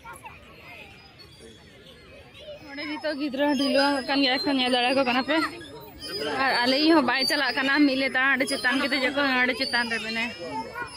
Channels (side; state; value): both; identical; correlation 1.00